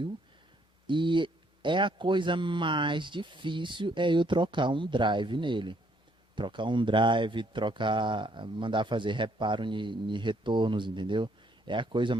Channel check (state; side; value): normal; both; correlation 0.68